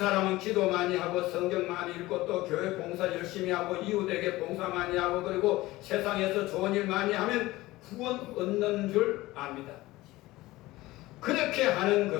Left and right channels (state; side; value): quieter; right; 18.6 dB